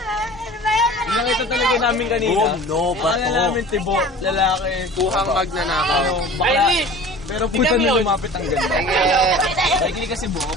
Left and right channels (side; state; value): both; normal; correlation 0.41